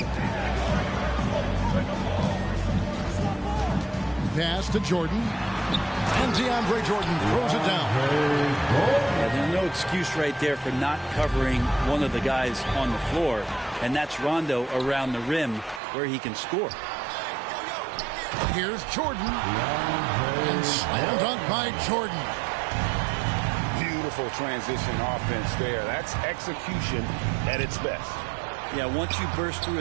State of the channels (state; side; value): drops out; left; at 15.8 s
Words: pass to Jordan. And DeAndre Jordan throws it down. Yeah, there's no excuse right there for not covering one of the guys on the floor. And that's Rondo around the rim where he can score. Here's Jordan. And slam dunk by Jordan. Beautiful transition offense there. That's execution at its best. Yeah, once you burst through